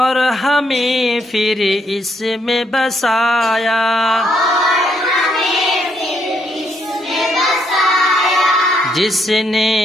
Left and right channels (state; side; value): normal; both; correlation 0.74